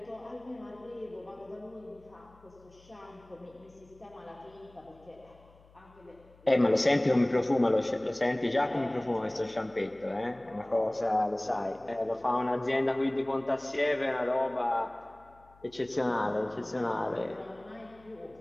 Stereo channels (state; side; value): noise; left; hum, 27 dB below the sound